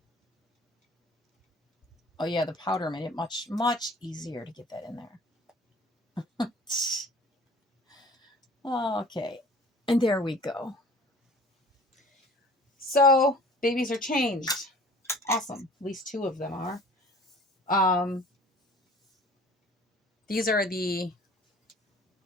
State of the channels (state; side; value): normal; both; correlation 0.47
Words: Oh yeah, the powder made it much, much easier to get that in there. Okay, and there we go. So babies are changed. Awesome. At least 2 of them are. These are the